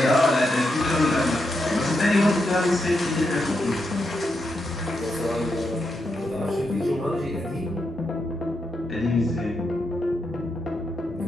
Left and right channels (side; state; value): both; normal; correlation 0.83